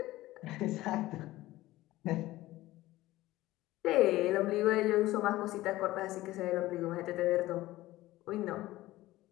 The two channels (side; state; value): right; quieter; 17.0 dB